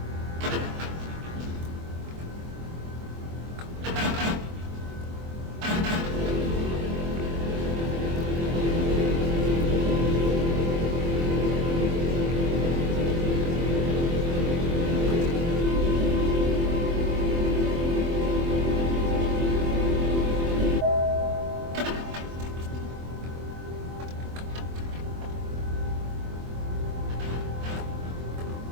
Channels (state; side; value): late; left; 24 ms